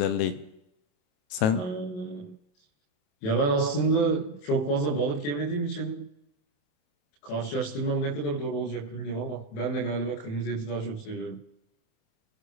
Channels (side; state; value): right; late; 28 ms